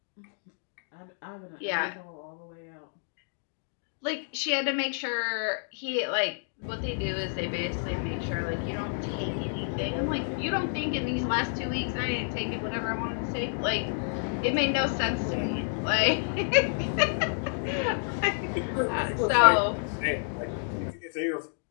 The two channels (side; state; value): right; silent; digital silence